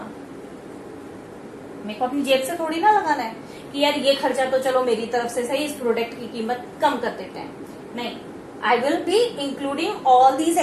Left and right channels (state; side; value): identical; both; correlation 1.00